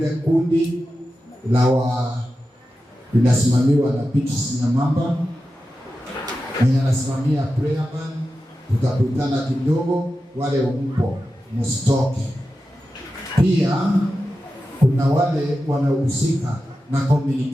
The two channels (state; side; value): normal; both; correlation 0.92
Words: kundi la linasimamiwa na Petrus Nyamamba, mwenye anasimamia prayer band. Tutakutana kidogo, wale mpo msitoke. Pia kuna wale wanahusika na